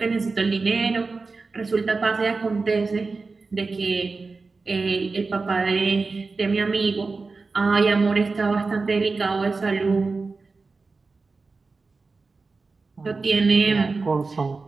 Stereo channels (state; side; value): quieter; left; 4.0 dB